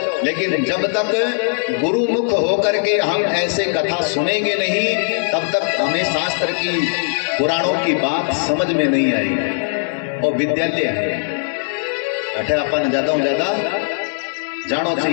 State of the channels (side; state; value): right; silent; 67 dB below the other